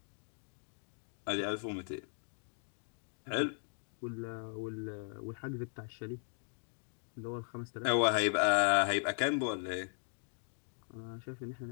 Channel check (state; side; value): silent; right; 52 dB below the other